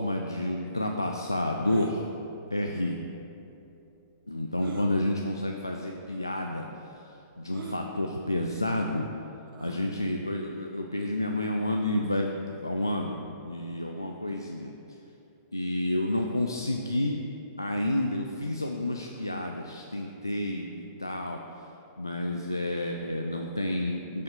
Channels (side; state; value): both; inverted; correlation -0.79